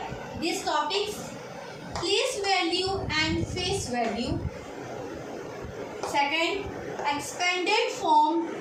these topics: place value and face value. Second, expanded form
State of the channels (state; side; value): identical; both; correlation 1.00